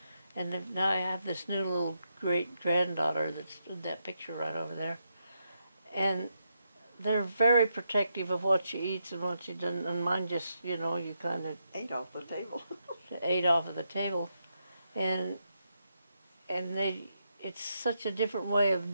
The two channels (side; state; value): both; inverted; correlation -0.82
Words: And then now I have this new little great granddaughter that's in that picture right over there. And they're very protective of what she eats and what she doesn't. And mine just, you know, you kind of Ate off the table. ate off of the table. And it's such a different way